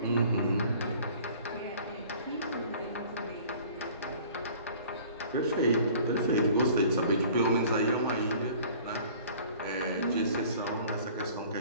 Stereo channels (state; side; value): inverted; both; correlation -0.49